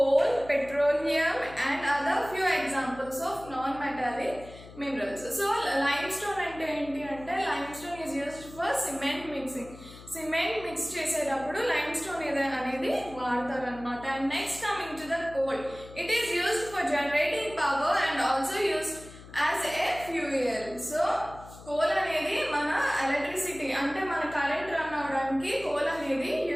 petroleum and other few examples of non metallic minerals. So lime stone అంటే ఏంటి అంటే lime stone is used for cement mixing. Cement mix చేసేటప్పుడు lime stone అనేది వాడతారు అనమాట. And next coming to the coal, it is used for generating power and also used as a fuel. So coal అనేది మన ఎలక్ట్రిసిటీ అంటే మన current run అవడానికి కోల్ అనేది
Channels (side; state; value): left; noise; hum, 18 dB below the sound